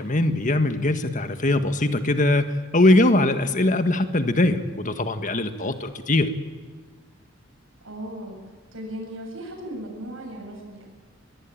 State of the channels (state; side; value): normal; both; correlation 0.63